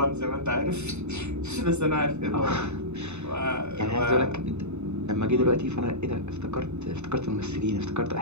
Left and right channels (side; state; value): left; late; 0.82 ms